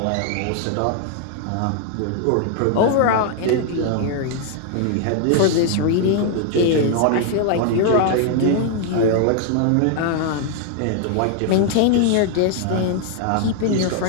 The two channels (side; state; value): both; different; correlation 0.00